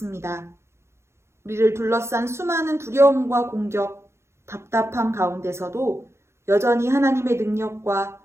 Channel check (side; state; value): left; late; 0.13 ms